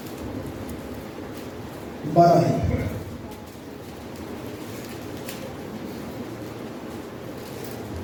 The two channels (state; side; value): identical; both; correlation 1.00